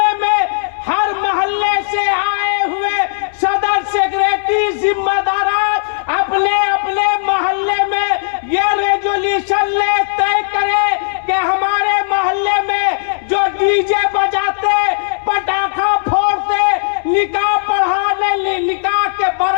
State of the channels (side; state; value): right; silent; digital silence